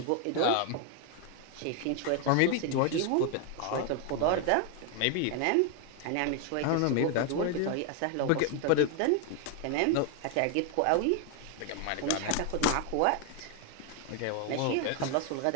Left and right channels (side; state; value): both; different; correlation 0.01